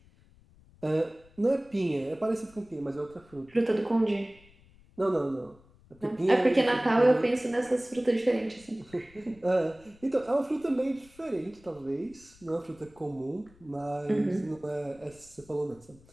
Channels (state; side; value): noise; left; rumble, 27 dB below the sound